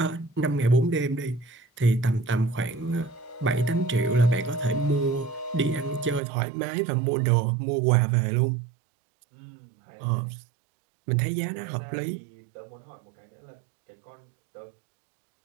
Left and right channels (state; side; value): drops out; left; at 6.2 s